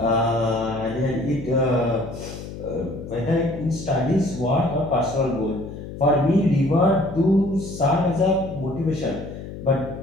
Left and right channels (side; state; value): left; noise; hum, 11 dB below the sound